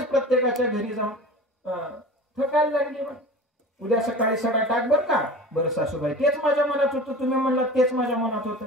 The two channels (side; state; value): both; normal; correlation 0.36